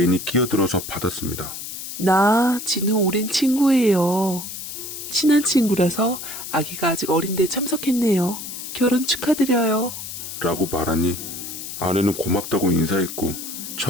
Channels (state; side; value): noise; left; hiss, 9 dB below the sound